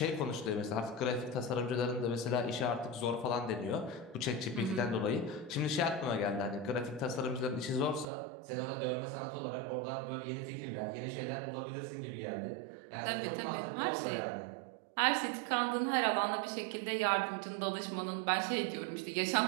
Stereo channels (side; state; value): left; drops out; at 8.1 s